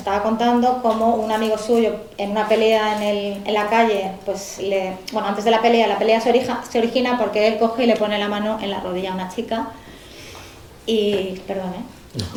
contando cómo un amigo suyo en una pelea en la calle, pues bueno, antes de la pelea se origina porque él coge y le pone la mano en la rodilla a una chica y, perdón,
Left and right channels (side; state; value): both; identical; correlation 1.00